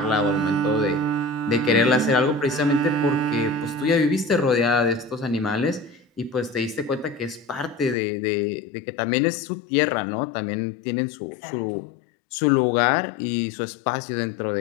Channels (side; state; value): right; drops out; at 8.0 s